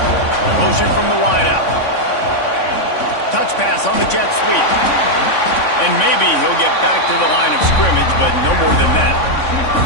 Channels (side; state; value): right; late; 3.5 ms